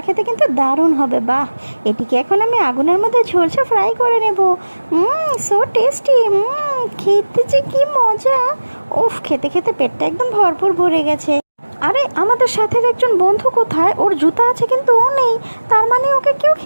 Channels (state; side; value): inverted; both; correlation -1.00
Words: খেতে কিন্তু দারুণ হবে। বাহ, এটিকে এখন আমি আগুনের মধ্যে ঝলসে ফ্রাই করে নেব। So tasty. খেতে যে কি মজা। উফ, খেতে খেতে পেটটা একদম ভরপুর ভরে গেছে। আরে আমাদের সাথে একজন বন্ধু কোথায়? ওর জুতা আছে কিন্তু ও নেই, তার মানে ওকে কেউ